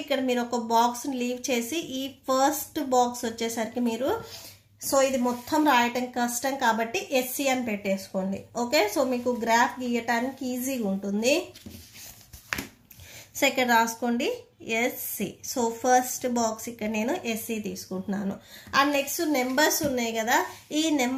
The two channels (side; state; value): both; identical; correlation 1.00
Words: ఇక్కడ మీరు ఒక బాక్స్ లీవ్ చేసి ఈ ఫస్ట్ బాక్స్ వచ్చేసరికి మీరు సో ఇది మొత్తం రాయటం కష్టం కాబట్టి ఎస్సీ అని పెట్టేసుకోండి. ఓకే, సో మీకు గ్రాఫ్ గీయటానికి ఈజీగా ఉంటుంది. సో ఇక్కడ రాసుకోండి ఎస్సీ. సో ఫస్ట్ బాక్స్ ఇక్కడ నేను ఎస్సీ తీసుకుంటున్నాను. అండ్ నెక్స్ట్ నెంబర్స్ ఉన్నాయి కదా, ఈ